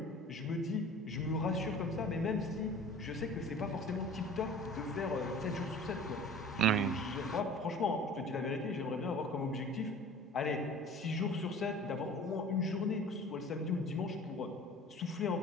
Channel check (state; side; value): normal; both; correlation 0.43